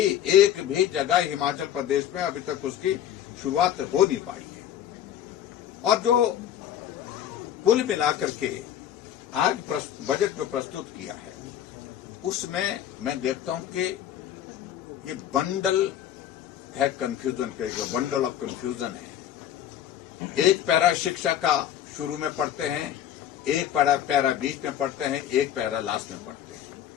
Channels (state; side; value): quieter; right; 10.6 dB